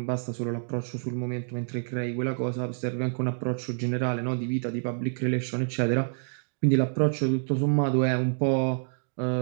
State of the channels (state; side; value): silent; left; digital silence